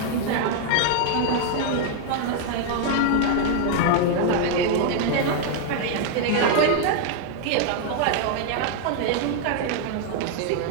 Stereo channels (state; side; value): different; both; correlation 0.00